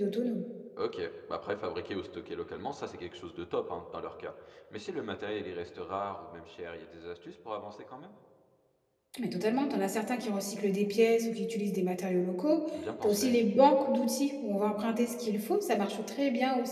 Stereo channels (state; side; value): identical; both; correlation 1.00